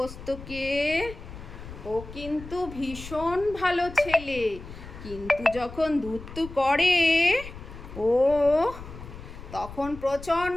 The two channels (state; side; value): noise; left; rumble, 14 dB below the sound